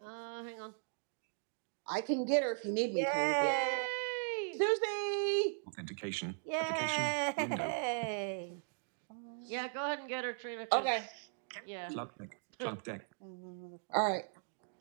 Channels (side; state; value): left; silent; digital silence